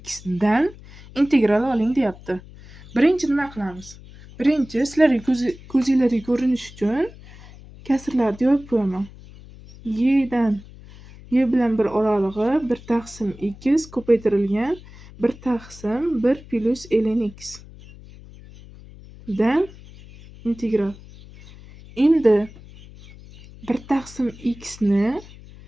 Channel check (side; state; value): left; noise; hum, 19 dB below the sound